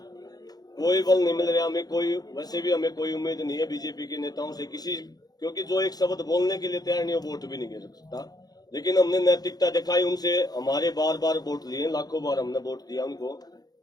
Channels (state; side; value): late; right; 0.19 ms